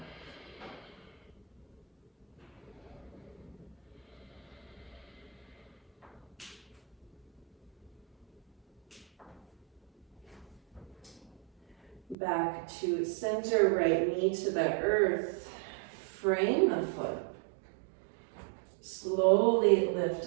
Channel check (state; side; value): drops out; left; at 12.2 s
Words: Back to center, right knee to the earth. Frame the foot. Slowly